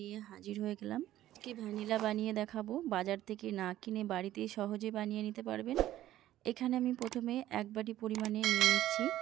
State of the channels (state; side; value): quieter; left; 13.7 dB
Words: হাজির হয়ে গেলাম। কি ভ্যানিলা বানিয়ে দেখাবো। বাজার থেকে না কিনে বাড়িতেই সহজে বানিয়ে নিতে পারবেন। এখানে আমি প্রথমে 1 বাটি পরিমাণে নিয়ে নিচ্ছি